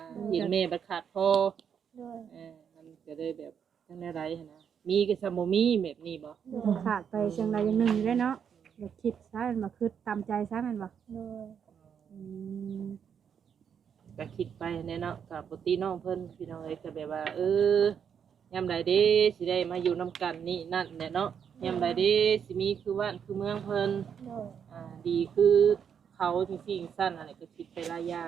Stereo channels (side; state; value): left; quieter; 7.7 dB